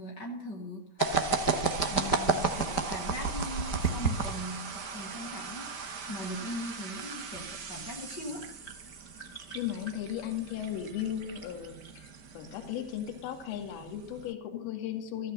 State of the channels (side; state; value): right; late; 5.1 ms